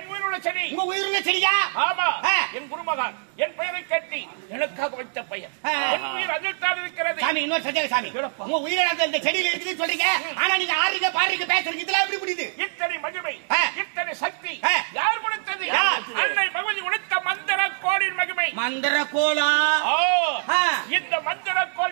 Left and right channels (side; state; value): left; silent; digital silence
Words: உயிருள்ள செடி. உங்க உயிருள்ள செடியா? ஆமா, என் குருமகன் என் பெயரை கட்டி எனக்காக வைத்த பெயர். என் உயிர் அதில் தான் இருக்கிறது. சாமி இன்னொரு சந்தேகம் சாமி. உங்க உயிரிழந்த இந்த செடியில் இருக்குதுன்னு சொல்றீங்க, ஆனா நீங்க ஆறீங்க பாருங்க பேசுறீங்க, இதெல்லாம் எப்படி முடியுது? இத்தனை மகிமை, இத்தனை சக்தி யார் கொடுத்தது? அன்னை பகவதி கொடுத்த மந்திர கோளின் மகிமை. மந்திர கோலா? இந்த மந்திர